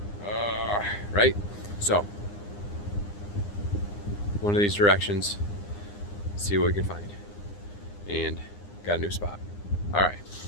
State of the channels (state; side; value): late; right; 9.8 ms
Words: Right? So, one of these directions, see what we can find. And got a new spot. All right,